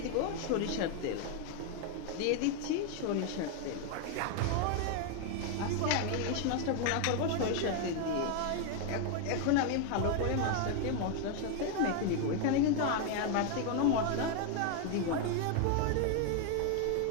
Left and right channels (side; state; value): both; different; correlation 0.01